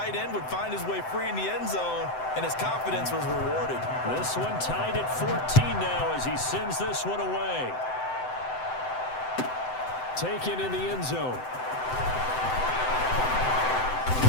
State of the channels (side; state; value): right; late; 7.8 ms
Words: end would find his way free in the end zone, and his confidence was rewarded. This one tied at 14 now as he sends this one away. Taken in the end zone.